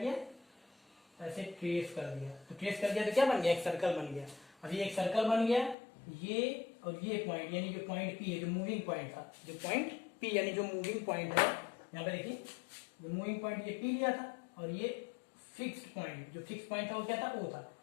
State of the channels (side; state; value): right; drops out; at 5.8 s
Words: ऐसे ट्रेस कर दिया। तो ट्रेस कर दिया तो क्या बन गया? एक सर्कल बन गया। अब ये एक सर्कल बन गया, ये और ये पॉइंट, यानी जो पॉइंट पी है, जो मूविंग पॉइंट था, जो पॉइंट पी यानी जो मूविंग पॉइंट है, यहाँ पे देखिए जो मूविंग पॉइंट ये पी लिया था, और ये फिक्स्ड पॉइंट, जो फिक्स पॉइंट था वो क्या था? ओ था।